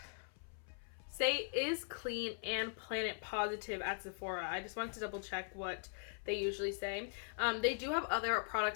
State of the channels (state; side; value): silent; right; 51 dB below the other